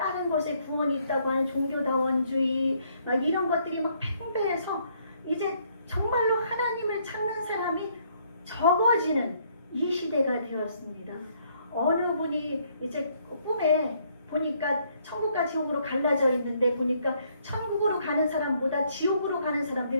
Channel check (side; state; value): both; inverted; correlation -0.68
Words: 곳에 구원이 있다고 하는 종교다원주의, 막 이런 것들이 막 팽배해서 이제 정말로 하나님을 찾는 사람이 적어지는 이 시대가 되었습니다. 어느 분이 이제 꿈에 보니까 천국과 지옥으로 갈라져 있는데, 보니까 천국으로 가는 사람보다 지옥으로 가는